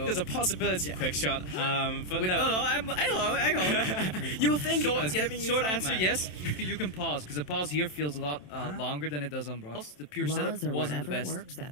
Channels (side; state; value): right; late; 27 ms